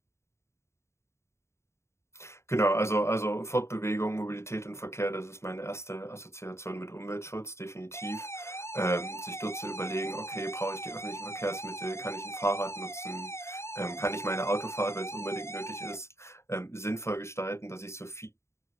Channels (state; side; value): late; right; 0.13 ms